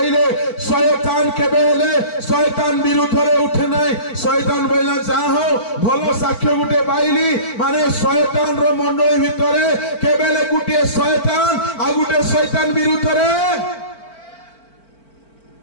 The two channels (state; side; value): late; right; 4.5 ms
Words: शयतान केबे हेले शयतान विरुद्ध रे उठे नाही शयतान बोला जाहो भलो साक्ष्य गुटे पाइली माने शयतान रो मंडली भितरे केबेले गुटे शयतान आ गुटे शयतान विरुद्ध रे